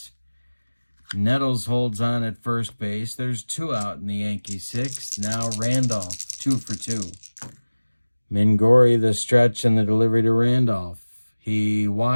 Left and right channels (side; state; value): both; inverted; correlation -1.00